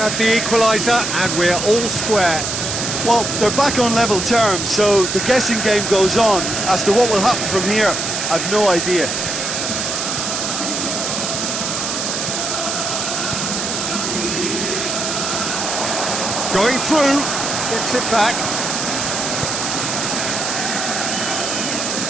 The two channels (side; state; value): right; noise; hiss, 2 dB below the sound